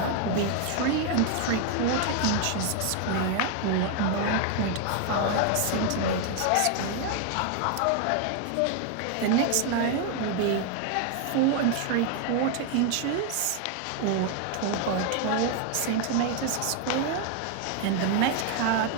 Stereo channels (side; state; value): both; different; correlation 0.01